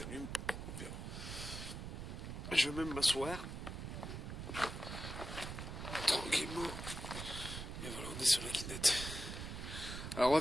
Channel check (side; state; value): right; noise; rumble, 7 dB below the sound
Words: on verra. Je vais même m'asseoir. Tranquillement. Et voilà, on est sur la Kinect. Alors, on va